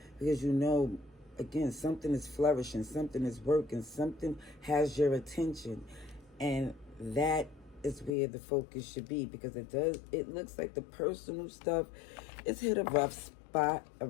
Because you know, again, something is flourishing, something is working, something has your attention. And that is where the focus should be, because it looks like the personal stuff is hit a rough spot,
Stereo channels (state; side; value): drops out; right; at 8.1 s